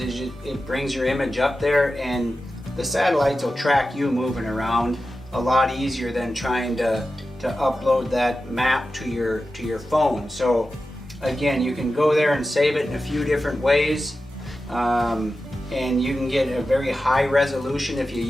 it brings your image up there, and the satellites will track you moving around a lot easier than trying to upload that map to your phone. So again, you can go there and save it in a few different ways, and you can get a very high resolution if you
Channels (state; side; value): normal; both; correlation 0.93